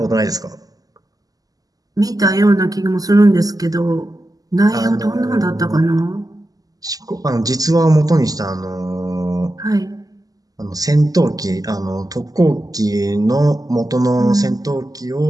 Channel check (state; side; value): late; left; 0.17 ms